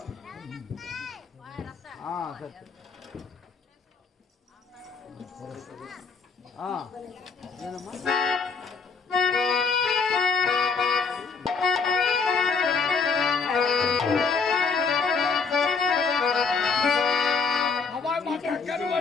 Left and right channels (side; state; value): right; quieter; 5.0 dB